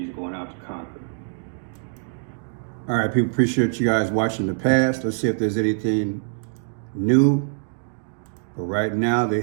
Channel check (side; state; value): left; silent; digital silence